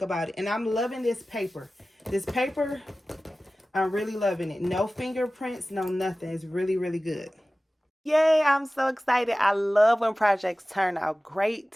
about it. And I'm loving this paper. This paper, I'm really loving it. No fingerprints, no nothing. It's really, really good. Yay, I'm so excited. I love when projects turn out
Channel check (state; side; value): normal; both; correlation 0.96